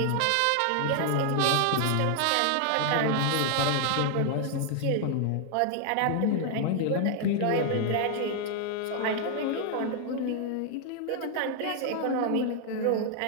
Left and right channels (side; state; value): both; different; correlation 0.00